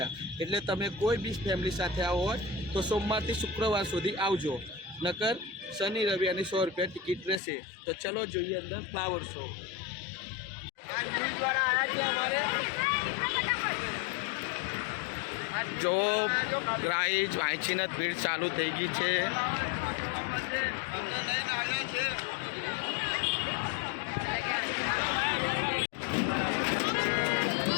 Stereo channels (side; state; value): right; drops out; at 7.4 s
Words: એટલે તમે કોઈ બી ફેમિલી સાથે આવો હોય તો સોમવારથી શુક્રવાર સુધી આવજો, નકર શનિ રવિ અને 100 રૂપિયા ટિકિટ રહેશે. તો ચલો જોઈએ અંદર ફ્લાવર શો. જો ગાઈઝ વાંચીને ભીડ ચાલુ થઈ ગઈ છે.